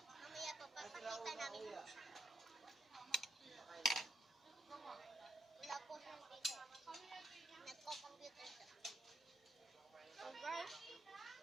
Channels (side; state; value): both; normal; correlation 0.81